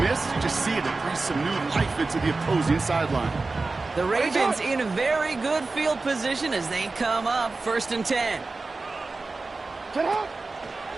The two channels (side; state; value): left; quieter; 3.7 dB